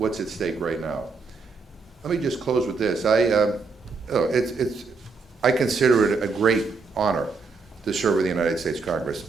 at stake right now. Let me just close with this. I consider it a great honor to serve in the United States Congress.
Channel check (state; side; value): quieter; left; 4.4 dB